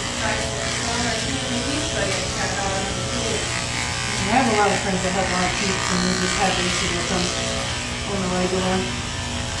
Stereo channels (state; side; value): identical; both; correlation 1.00